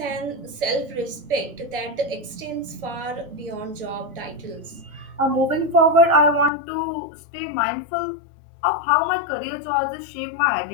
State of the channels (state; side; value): drops out; right; at 6.5 s